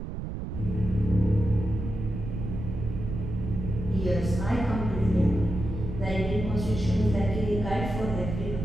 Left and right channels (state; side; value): noise; right; rumble, 6 dB below the sound